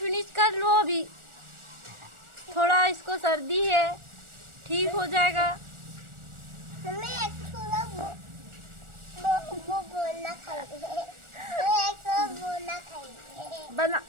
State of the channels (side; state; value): left; late; 1.4 ms